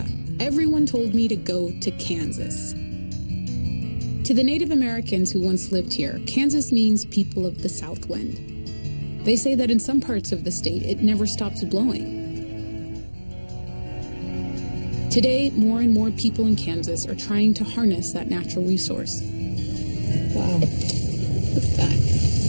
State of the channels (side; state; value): both; inverted; correlation -1.00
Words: everyone told me to go to Kansas. To the Native Americans who once lived here, Kansas means people of the South Wind. They say that in some parts of the state, it never stops blowing. Today, more and more people in Kansas are trying to harness that natural resource. Wow, look at that.